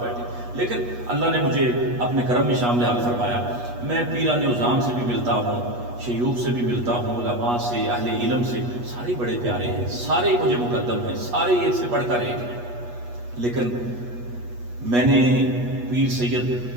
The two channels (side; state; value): left; late; 8.3 ms